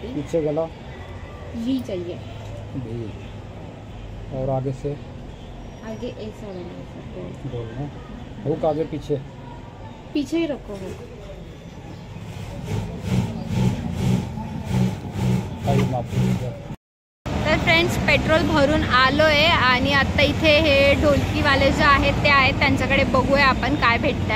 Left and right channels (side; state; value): both; identical; correlation 1.00